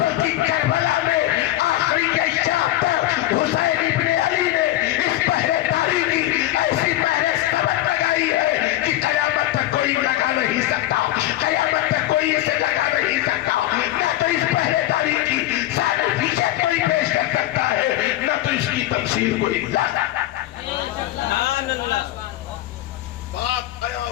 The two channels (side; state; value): right; quieter; 14.8 dB